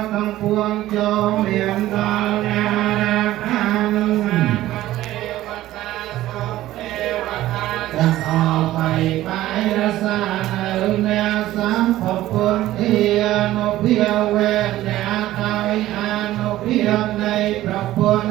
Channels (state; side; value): quieter; left; 15.0 dB